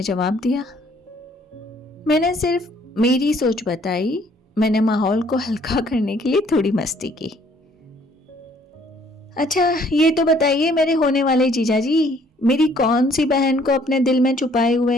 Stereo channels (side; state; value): both; normal; correlation 0.62